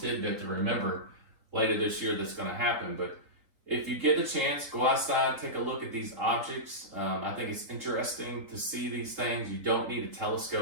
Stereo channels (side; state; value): left; late; 3.8 ms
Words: to remember later this year that's going to happen. But if you get the chance, go outside, take a look at these objects. I think it's interesting to see these things. You don't need a